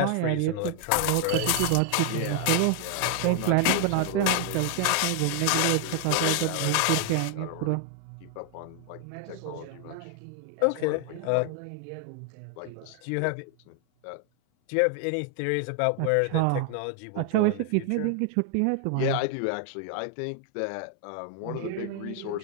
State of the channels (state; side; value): different; both; correlation 0.00